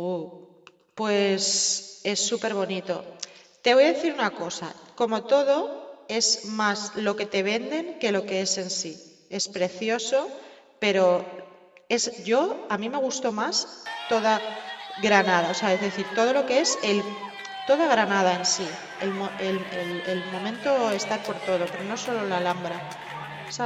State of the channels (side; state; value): both; identical; correlation 1.00